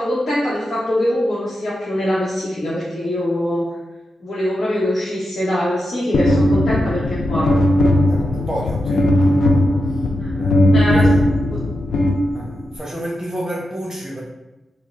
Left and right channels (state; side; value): normal; both; correlation 0.88